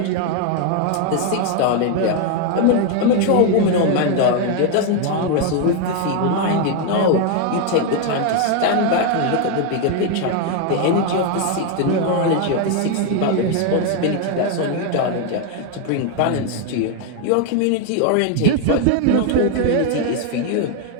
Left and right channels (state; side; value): different; both; correlation 0.01